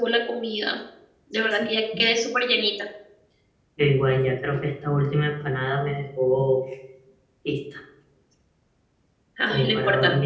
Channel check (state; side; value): identical; both; correlation 1.00